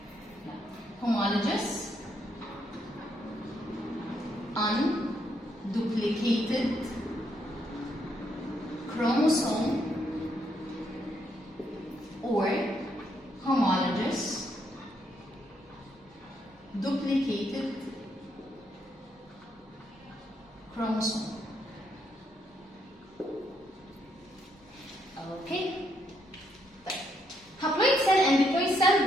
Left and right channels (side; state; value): both; normal; correlation 0.75